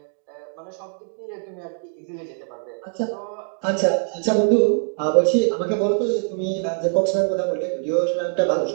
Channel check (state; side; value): silent; left; 63 dB below the other